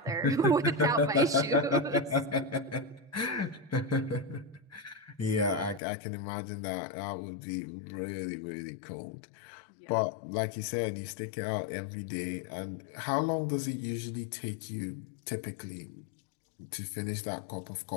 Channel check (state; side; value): drops out; right; at 5.8 s